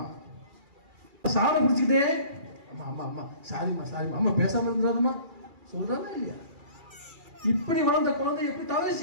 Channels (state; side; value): late; left; 2.4 ms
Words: சாரை பிடிச்சிக்கிட்டே அம்மா அம்மா அம்மா சாரிம்மா சாரிம்மா, அம்மா பேசாம இருந்தாருமா சொல்றாங்க இல்லையா? இப்படி வளர்ந்த குழந்தை எப்படி